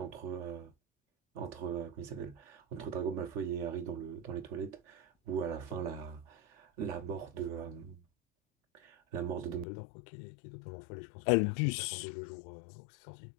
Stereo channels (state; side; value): drops out; right; at 9.7 s